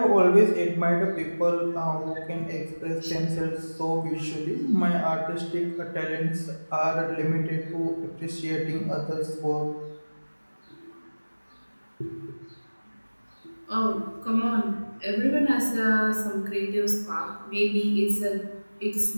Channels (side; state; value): both; inverted; correlation -1.00